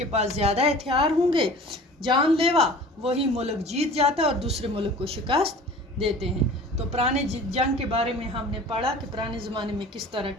पास ज़्यादा हथियार होंगे जानलेवा, वही मुल्क जीत जाता है और दूसरे मुल्क को शिकस्त देते हैं। तो पुराने जंग के बारे में हमने पढ़ा कि पुराने ज़माने में किस तरह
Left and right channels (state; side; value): normal; both; correlation 0.43